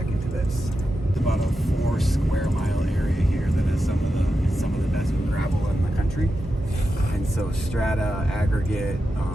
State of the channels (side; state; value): both; normal; correlation 0.90